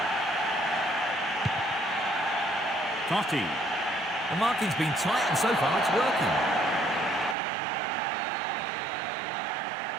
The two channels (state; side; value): drops out; left; at 7.4 s